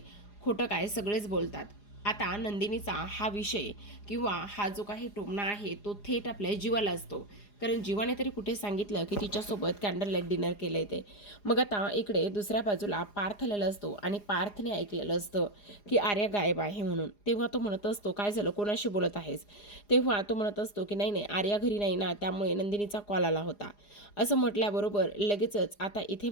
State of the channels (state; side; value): late; right; 4.9 ms